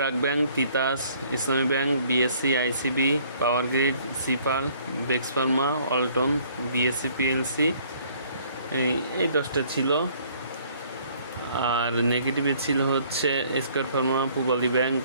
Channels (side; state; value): both; inverted; correlation -0.60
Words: Bank, Titas, Islami Bank, BSC, ICB, Power Grid, সিপাল, বেক্স ফার্মা, অল্টন, বিএসসি পিএলসি, এই 10টা ছিল। আর নেগেটিভে ছিল হচ্ছে Square Pharma, Pubali Bank,